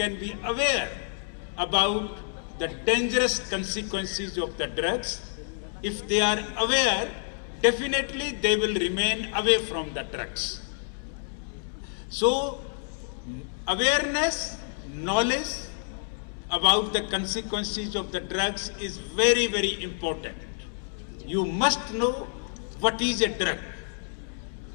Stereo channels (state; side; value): silent; right; 59 dB below the other